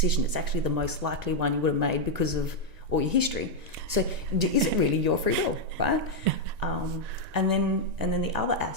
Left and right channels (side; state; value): left; late; 1.9 ms